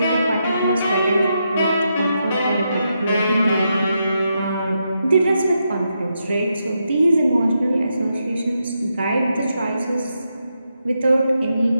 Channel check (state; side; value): inverted; both; correlation -0.83